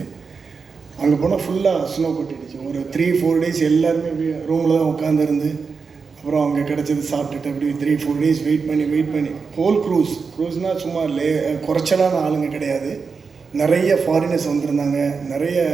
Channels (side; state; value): left; quieter; 5.1 dB